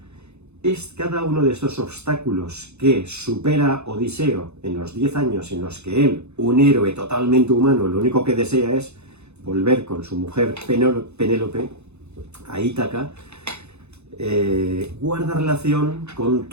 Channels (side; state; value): left; late; 0.81 ms